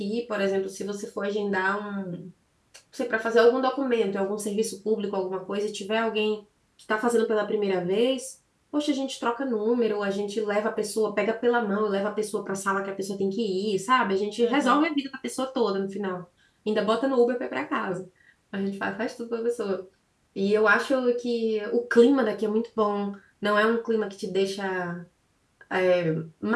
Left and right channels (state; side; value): identical; both; correlation 1.00